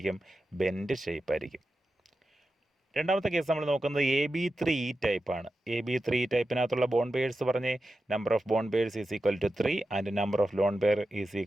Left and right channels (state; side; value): normal; both; correlation 0.91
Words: ബെൻഡ് ഷേപ്പ് ആയിരിക്കും. രണ്ടാമത്തെ കേസ് നമ്മൾ നോക്കുന്നത് AB3E ടൈപ്പാണ്. AB3E ടൈപ്പിനകത്തുള്ള ബോൺ പെയേഴ്സ് പറഞ്ഞ് number of bond pairs is equal to 3 and number of lone pair is